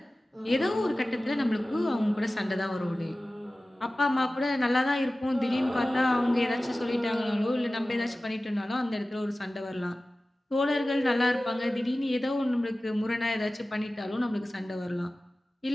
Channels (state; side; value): normal; both; correlation 0.96